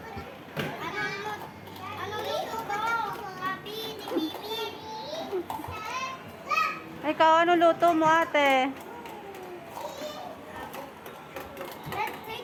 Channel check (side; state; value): both; identical; correlation 1.00